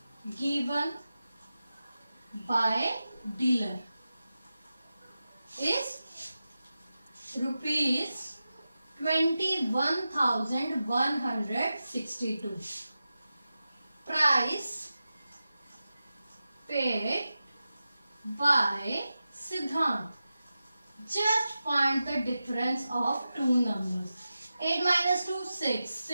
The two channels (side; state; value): both; inverted; correlation -0.92